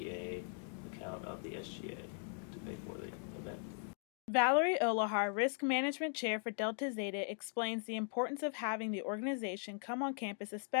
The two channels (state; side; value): silent; right; 52 dB below the other